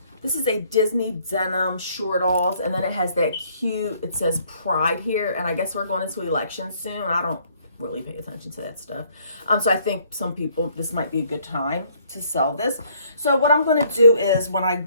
This is a Disney denim short-alls, and then it has that cute, it says Pride here, and I guess we're going into elections soon. I don't really pay attention to that stuff. So I think some people, this might be a good time to sell this. So what I'm going to do is when I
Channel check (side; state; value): both; inverted; correlation -0.63